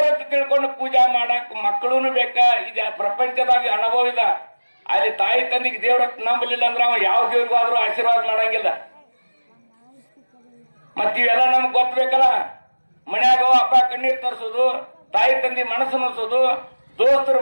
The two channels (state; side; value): inverted; both; correlation -1.00